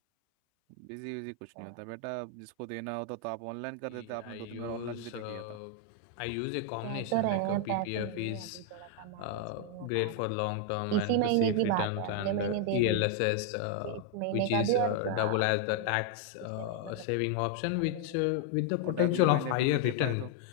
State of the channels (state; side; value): different; both; correlation 0.00